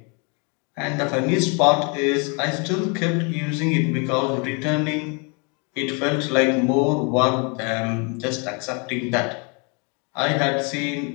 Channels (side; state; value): right; quieter; 34.2 dB